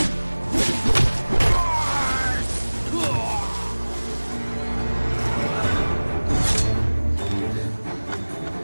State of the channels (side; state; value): both; inverted; correlation -1.00